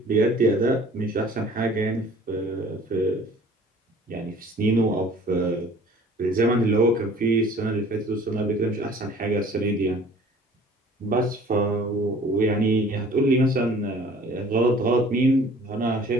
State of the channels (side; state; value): both; normal; correlation 0.50